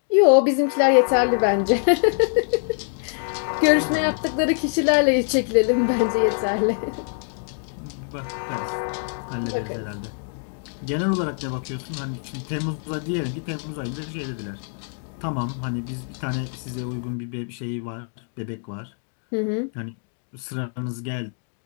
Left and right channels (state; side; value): silent; right; 63 dB below the other